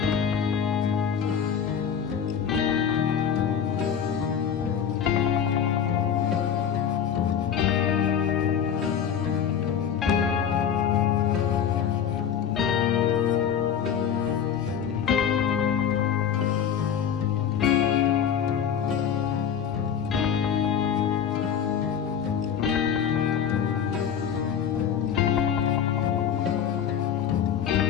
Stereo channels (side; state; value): right; quieter; 8.2 dB